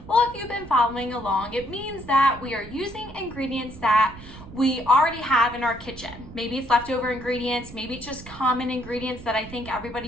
Well, if you've been following along, it means that we are using ingredients that we already have in our kitchen. Maybe it's leftover ingredients, maybe it's just common ingredients that I think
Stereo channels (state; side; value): noise; right; rumble, 16 dB below the sound